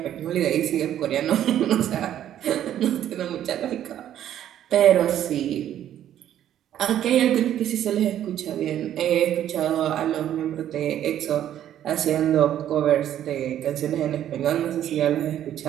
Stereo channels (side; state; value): left; quieter; 11.1 dB